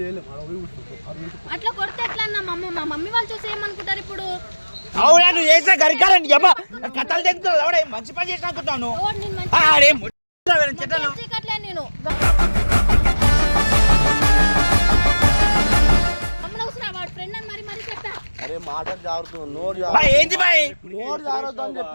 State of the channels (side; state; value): both; inverted; correlation -1.00